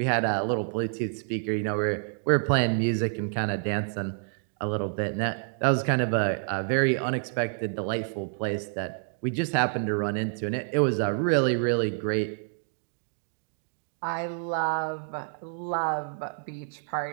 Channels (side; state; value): left; silent; digital silence